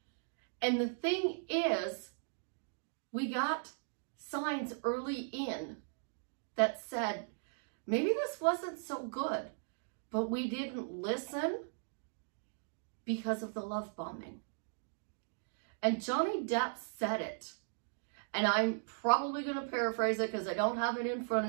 And the thing is, we got signs early in that said, maybe this wasn't so good, but we didn't listen because of the love bombing. And Johnny Depp said it. And I'm probably going to paraphrase it because I don't have it in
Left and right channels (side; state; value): left; silent; digital silence